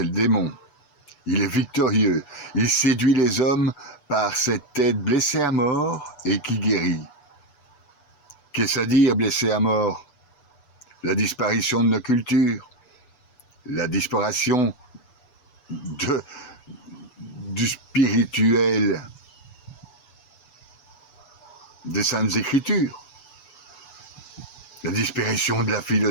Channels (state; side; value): late; right; 6.9 ms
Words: le démon. Il est victorieux. Il séduit les hommes par cette tête blessée à mort et qui guérit. Qu'est-ce à dire blessé à mort? La disparition de nos cultures, la disparition du spirituel des Saintes Écritures, la disparition de la